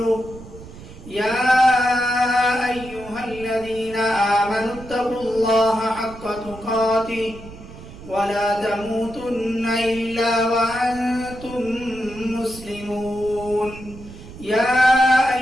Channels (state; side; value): noise; right; rumble, 16 dB below the sound